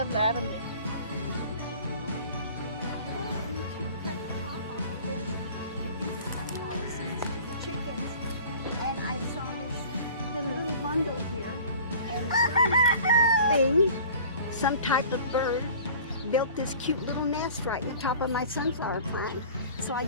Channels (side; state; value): both; inverted; correlation -0.45